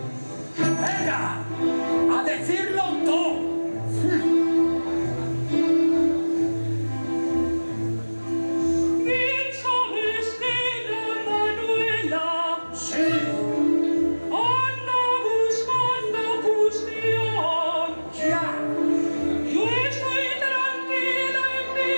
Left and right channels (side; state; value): both; inverted; correlation -1.00